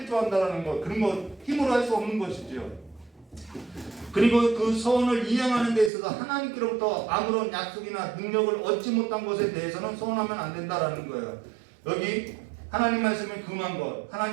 한다라는 것, 그런 거 힘으로 할 수 없는 것이죠. 그리고 그 서원을 이행하는 데 있어서 하나님께로부터 아무런 약속이나 능력을 얻지 못한 것에 대해서는 서원하면 안 된다라는 거예요. 여기 하나님 말씀에 금한 것,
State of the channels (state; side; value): drops out; left; at 5.9 s